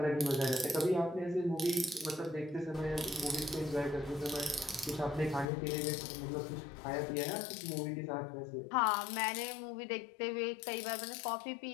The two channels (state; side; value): drops out; right; at 5.5 s